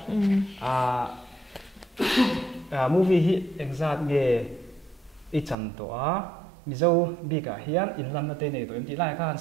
movie hi exact nge i chan to mizo bi ka hian in lam na te nei to em ti lai khan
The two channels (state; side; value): drops out; left; at 5.6 s